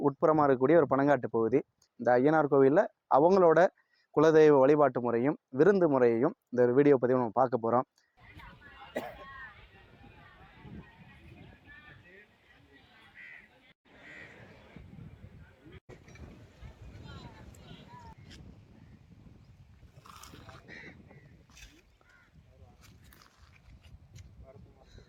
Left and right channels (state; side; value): identical; both; correlation 1.00